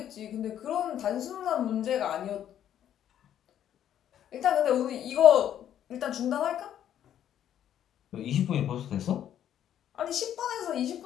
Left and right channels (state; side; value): quieter; right; 10.5 dB